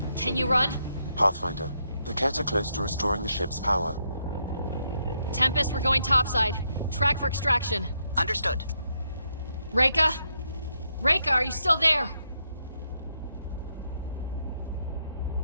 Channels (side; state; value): both; inverted; correlation -0.78